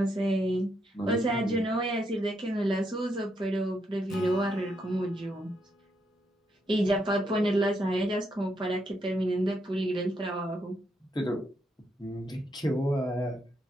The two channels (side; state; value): both; normal; correlation 0.78